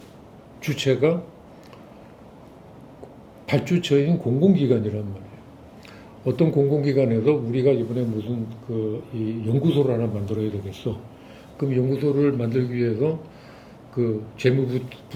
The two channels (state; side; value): identical; both; correlation 1.00